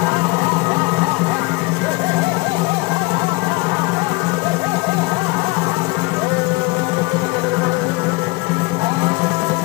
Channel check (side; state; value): right; quieter; 23.8 dB